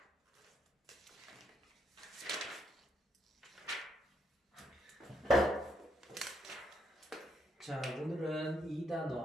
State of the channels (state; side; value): normal; both; correlation 0.75